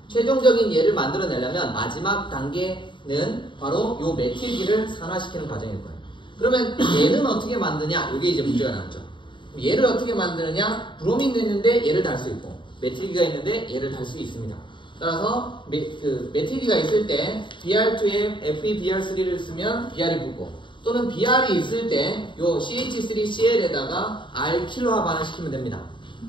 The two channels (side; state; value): right; late; 0.23 ms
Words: 최종적인 얘를 만들어내려면 마지막 단계는 바로 요 메틸기를 산화시키는 과정일 거예요. 그러면 얘는 어떻게 만드냐? 이게 이제 문제가 나왔죠. 얘를 어떻게 만드느냐? 브로민도 있는데 얘를 달 수 있고 메틸기가 있는데 얘를 달 수 있습니다. 따라서 메틸기가 있을 때 BR2에 FeBr3를 쓰면 BR이 붙고 또는 BR이 있을 때 요 CH3Cl에다가 알킬화 반응시키면 됩니다.